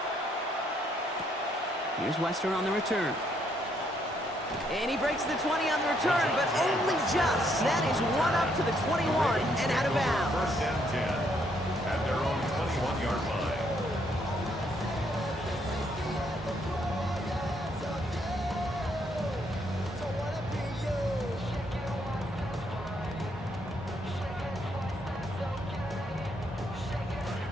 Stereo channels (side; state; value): both; normal; correlation 0.72